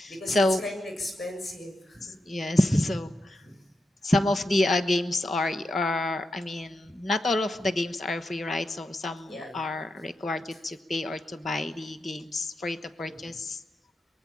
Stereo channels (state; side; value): normal; both; correlation 0.87